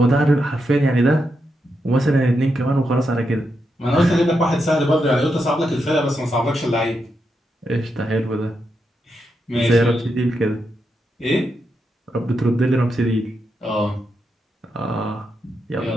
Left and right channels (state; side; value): normal; both; correlation 0.84